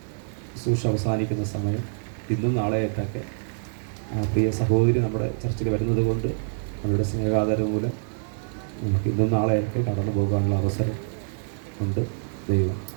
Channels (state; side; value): silent; left; digital silence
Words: ശുശ്രൂഷ അവസാനിക്കുന്ന സമയം. ഇന്നും നാളെയായിട്ടൊക്കെ പ്രിയ സഹോദരി നമ്മുടെ ചർച്ചിൽ വരുന്നത് കൊണ്ട് അവരുടെ സ്നേഹാദരം മൂലം നമുക്ക് ഇന്നും നാളെയൊക്കെ കടന്നു പോകാനുള്ള അവസരം ഉണ്ട്. ദൈവം